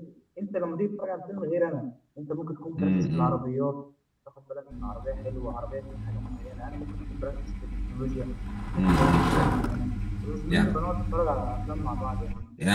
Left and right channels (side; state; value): both; identical; correlation 1.00